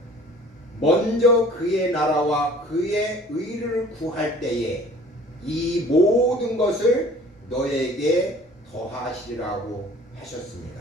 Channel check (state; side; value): normal; both; correlation 0.49